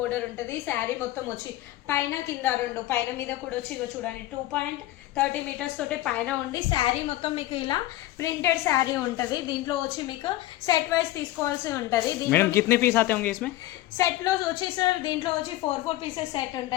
ఉంటుంది. శారీ మొత్తం వచ్చి పైన కింద రెండు, పైన మీద కూడా వచ్చి ఇగో చూడండి 2.30 మీటర్స్ తోటి పైన ఉండి శారీ మొత్తం మీకు ఇలా ప్రింటెడ్ శారీ ఉంటుంది. దీంట్లో వచ్చి మీకు సెట్ వైజ్ తీసుకోవాల్సి ఉంటుంది. సెట్ లో వచ్చి సార్ దీంట్లో వచ్చి 4 పీసెస్ సెట్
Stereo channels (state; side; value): quieter; right; 15.9 dB